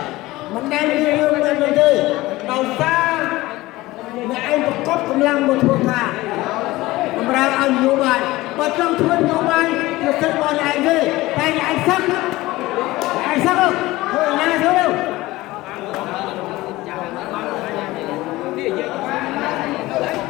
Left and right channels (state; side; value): quieter; right; 18.7 dB